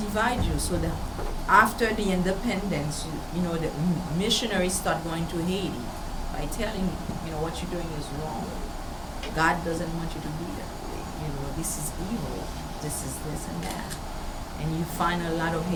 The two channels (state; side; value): identical; both; correlation 1.00